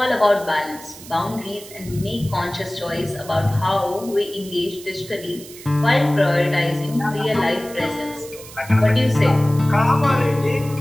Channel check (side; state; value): right; noise; hiss, 17 dB below the sound